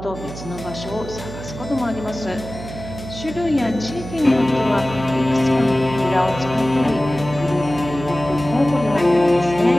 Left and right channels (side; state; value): right; noise; hum, 11 dB below the sound